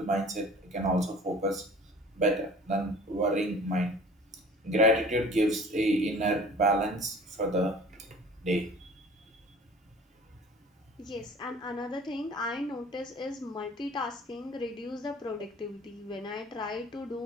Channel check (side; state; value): both; normal; correlation 0.46